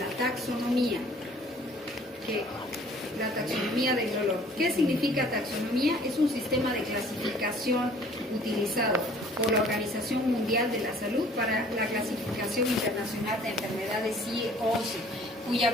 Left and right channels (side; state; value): both; normal; correlation 0.54